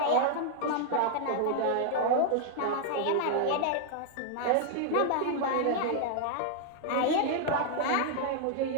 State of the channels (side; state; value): both; different; correlation -0.01